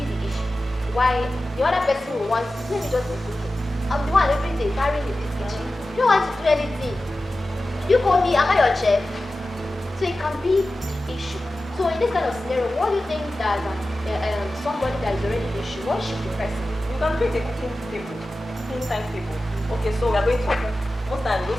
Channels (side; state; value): both; normal; correlation 0.94